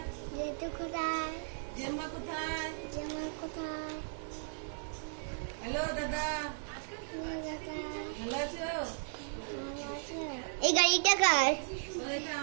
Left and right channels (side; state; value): left; silent; digital silence